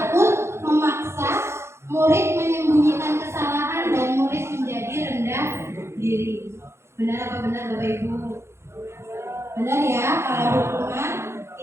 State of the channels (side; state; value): left; late; 0.13 ms